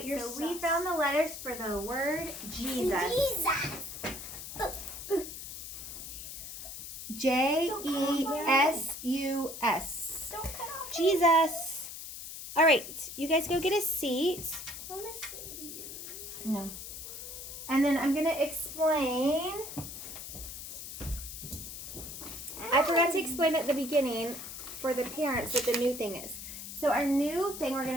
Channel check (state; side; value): noise; left; hiss, 10 dB below the sound